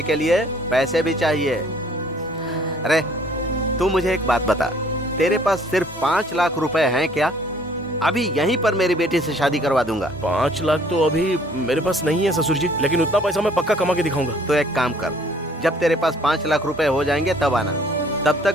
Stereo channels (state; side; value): normal; both; correlation 0.58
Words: के लिए पैसे भी चाहिए। अरे तू मुझे एक बात बता, तेरे पास सिर्फ 5 लाख रुपए हैं क्या? अभी यहीं पर मेरी बेटी से शादी करवा दूंगा। 5 लाख तो अभी मेरे पास नहीं है ससुर जी, लेकिन उतना पैसा मैं पक्का कमा के दिखाऊंगा। तो एक काम कर, जब तेरे पास 5 लाख रुपए हो जाएंगे तब आना, तब तक